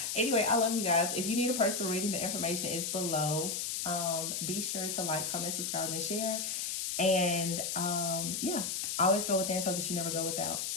Anyway, I love you guys. If you need a personal reading, the information is below. Be sure to like, comment, subscribe, and share. And yeah, always go within so that you never go without.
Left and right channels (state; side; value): noise; left; hiss, 2 dB below the sound